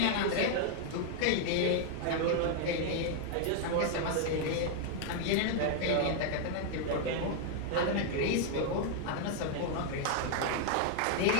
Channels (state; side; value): different; both; correlation 0.00